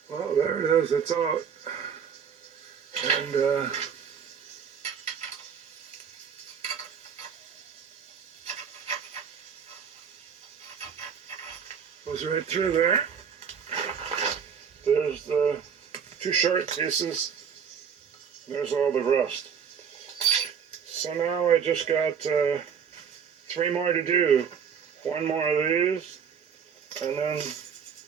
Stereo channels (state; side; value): quieter; left; 7.3 dB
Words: Well, there it is. It's out. And goes right through there. There's the two short pieces. There's all the rust. So now I just got 3 more to do. one more of these, and then